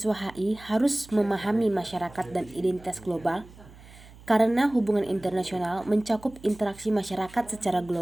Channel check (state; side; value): noise; right; hum, 21 dB below the sound